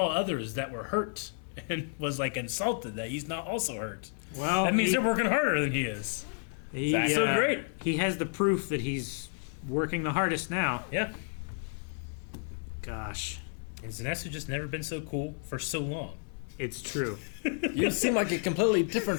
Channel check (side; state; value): right; silent; 57 dB below the other